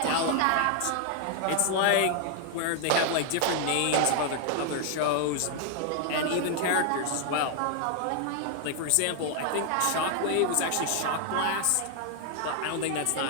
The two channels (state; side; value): different; both; correlation 0.00